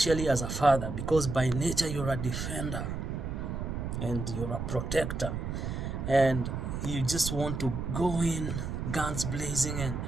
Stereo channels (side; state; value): right; noise; rumble, 4 dB below the sound